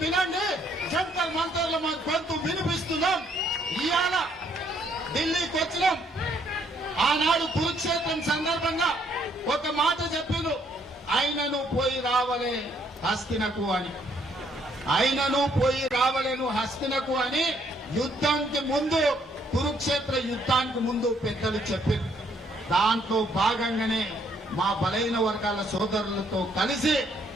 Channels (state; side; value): normal; both; correlation 0.68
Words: వినండి, జంతర్ మంతర్లో మా గొంతు వినిపిస్తున్నాం. ఇవాళ ఢిల్లీకి వచ్చినాం. ఆనాడు కురుక్షేత్రం సందర్భంగా ఒక మాట చెప్పిండు, ఆయనను పోయి రావలే హస్తినకు అని. ఆయనను పోయి రావలేను హస్తినకు అని యుద్ధానికి ముందు, కురుక్షేత్ర యుద్ధానికి ముందు పెద్దలు చెప్పారు. దాంట్లో భాగంగానే మా బలైన వర్గాల సోదరులతో కలిసి